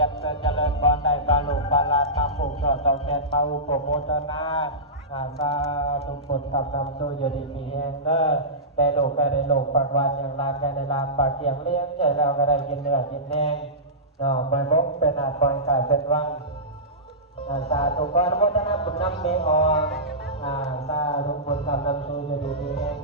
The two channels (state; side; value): normal; both; correlation -0.18